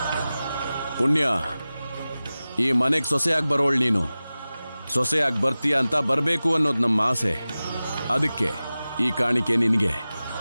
ಪುಣ್ಯ, ಈ ಮನೆಗೆ ಸೊಸೆಯಾಗಿ ಬರೋಳು ನೀನು. ಸೊಸೆಯಾಗಿ ಬರ್ತೀಯ ಅಂತ ಬರಬೇಕು ಅನ್ನೋದು ನಮ್ಮ ಆಸೆ. ಅದಕ್ಕೆ ಈ ಕಾಣಿಕೆ ನಿನಗೆ.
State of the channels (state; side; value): inverted; both; correlation -0.96